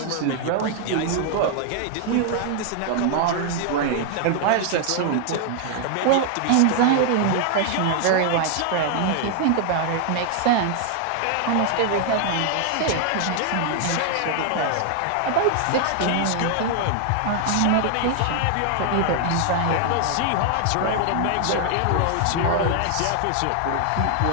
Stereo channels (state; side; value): different; both; correlation 0.00